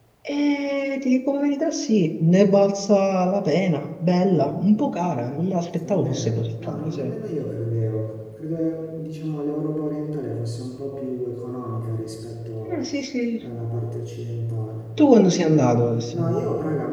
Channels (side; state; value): both; identical; correlation 1.00